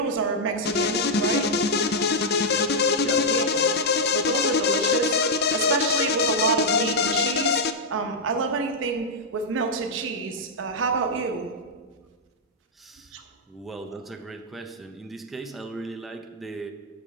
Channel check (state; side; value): normal; both; correlation -0.04